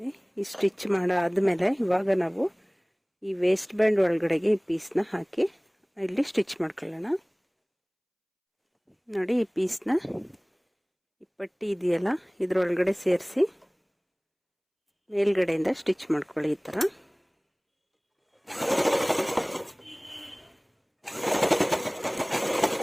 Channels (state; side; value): identical; both; correlation 1.00